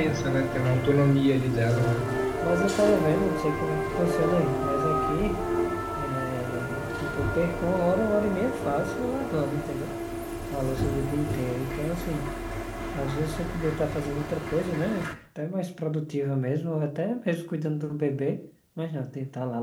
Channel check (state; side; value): identical; both; correlation 1.00